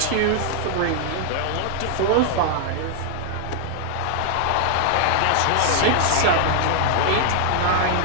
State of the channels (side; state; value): both; different; correlation 0.00